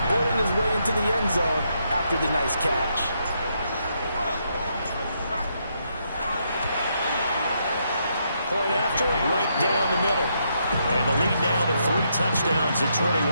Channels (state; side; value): inverted; both; correlation -0.77